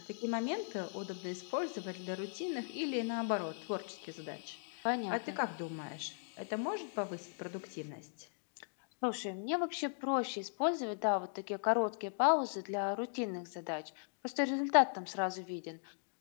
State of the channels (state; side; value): silent; right; digital silence